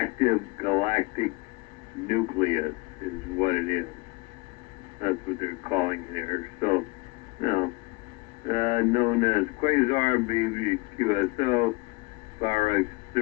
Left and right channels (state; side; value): quieter; right; 26.1 dB